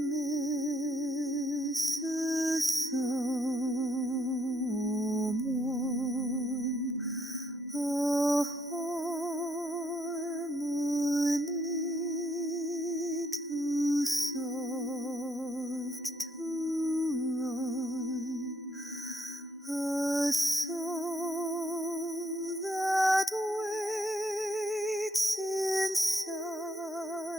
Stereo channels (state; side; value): normal; both; correlation 0.73